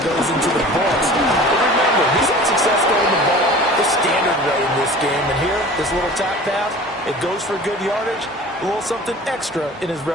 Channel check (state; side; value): normal; both; correlation 0.42